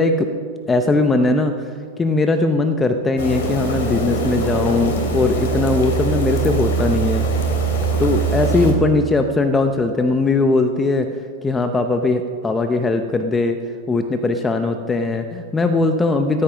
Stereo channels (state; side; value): normal; both; correlation 0.53